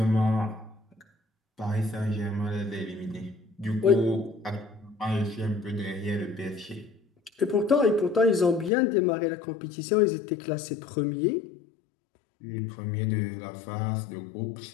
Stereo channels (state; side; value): drops out; right; at 8.7 s